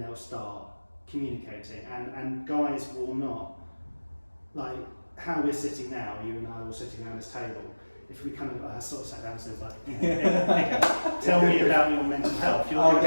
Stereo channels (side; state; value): both; inverted; correlation -1.00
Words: they'll start communicating. And guys will not, like how we're sitting now, you and I all sitting around this table. If we kind of sort of sat down and said like, okay, tell me about your mental health. You're going to be